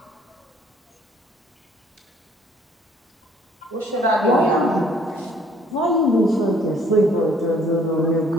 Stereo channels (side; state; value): both; normal; correlation 0.60